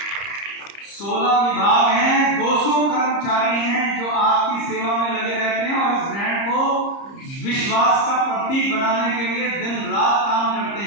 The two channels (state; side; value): late; right; 30 ms